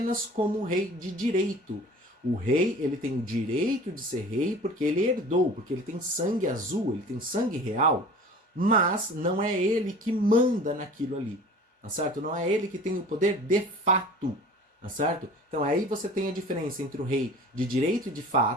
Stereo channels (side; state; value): both; normal; correlation 0.43